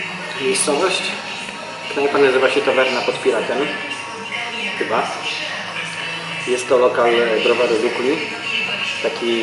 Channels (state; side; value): identical; both; correlation 1.00